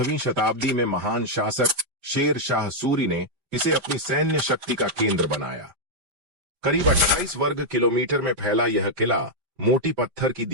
शताब्दी में महान शासक शेर शाह सूरी ने इसे अपनी सैन्य शक्ति का केंद्र बनाया। करीब 28 वर्ग किलोमीटर में फैला यह किला मोटी पत्थर की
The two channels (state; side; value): late; left; 5.0 ms